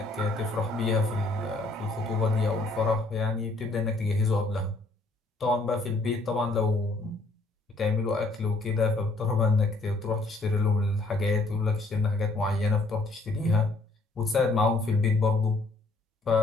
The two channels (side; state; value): right; quieter; 3.1 dB